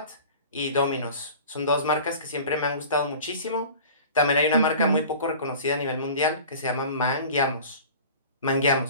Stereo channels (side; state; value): both; inverted; correlation -0.40